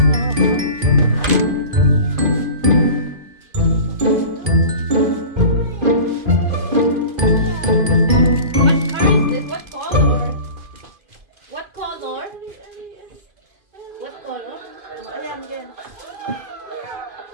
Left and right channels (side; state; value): left; late; 2.5 ms